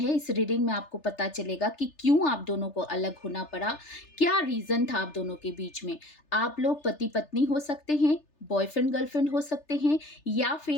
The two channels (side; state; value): right; late; 3.3 ms